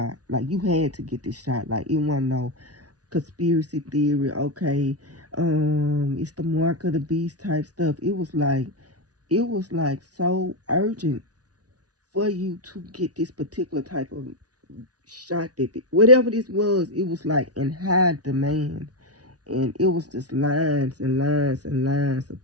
Like you had to get this shot. Like it wasn't no conspiracy theory. Okay, it's the mark of the beast type stuff. It was like so urgent for you to get this particular type of shot that whatever this was, it was like in high demand, and it was just lines and lines and lines of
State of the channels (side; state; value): left; late; 0.68 ms